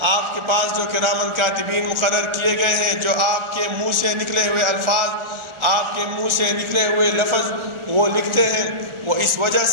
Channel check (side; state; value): left; late; 1.4 ms